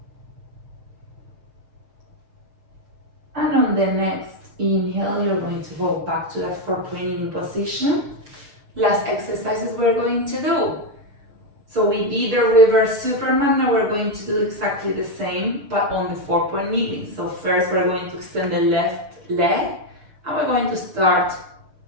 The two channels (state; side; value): late; left; 6.6 ms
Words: And on the next inhale, you're going to go back to that 4-point kneeling position. Last exercises we're going to do. So we did the reverse Superman, now we're going to do exactly the same, but on the 4-point kneeling. So first we're going to extend the left leg, and we're going to start